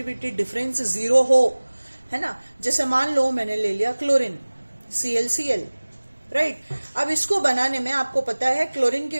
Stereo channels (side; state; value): both; inverted; correlation -1.00